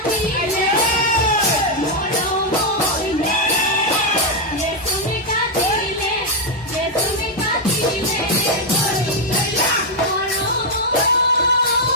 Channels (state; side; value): normal; both; correlation 0.00